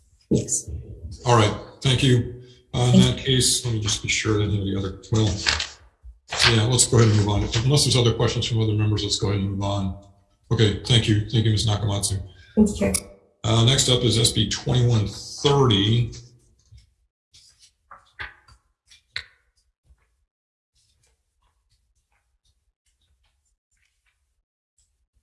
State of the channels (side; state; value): both; identical; correlation 1.00